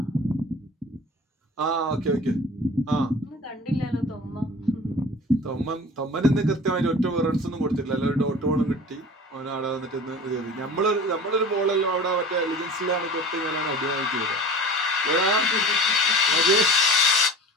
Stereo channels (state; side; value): normal; both; correlation 0.40